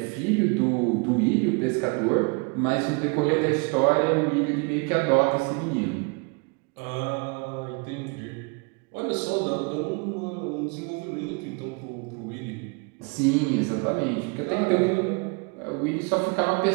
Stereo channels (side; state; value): left; quieter; 32.3 dB